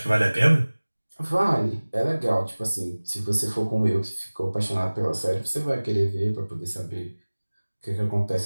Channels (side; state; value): both; inverted; correlation -1.00